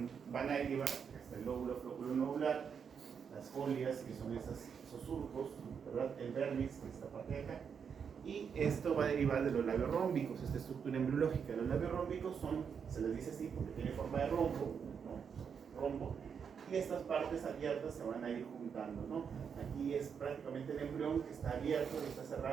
van a derivar hasta el lóbulo flóculo nodular, las folias, que son esos surcos, ¿verdad? El vernix, que es esta parte de acá, y esto va a derivar de los labios rómbicos, esta estructura embriológica. Los labios rómbicos se les dice así porque tiene forma de rombo, ¿no? Rombo, y estas partes abiertas se van a ir juntando, ¿no? Aquí es prácticamente el embrión que está abierto, que está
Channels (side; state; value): left; quieter; 6.8 dB